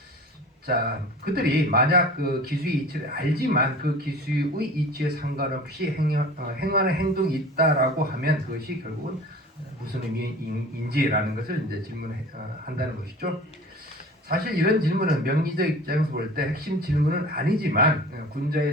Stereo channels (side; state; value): both; normal; correlation 0.41